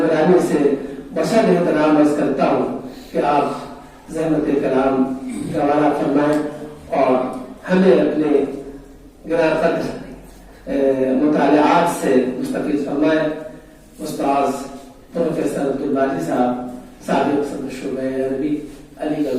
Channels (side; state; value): both; identical; correlation 1.00